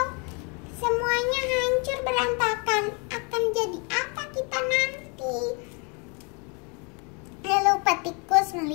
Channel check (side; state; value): right; quieter; 33.7 dB